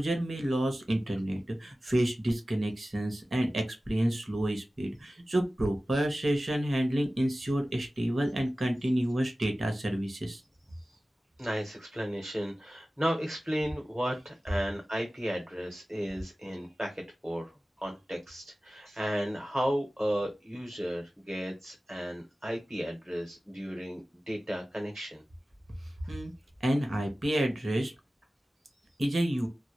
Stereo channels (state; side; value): normal; both; correlation 0.96